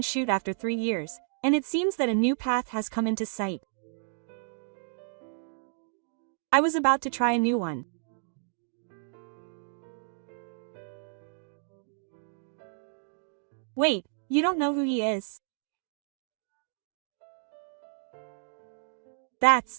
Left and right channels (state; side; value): silent; left; digital silence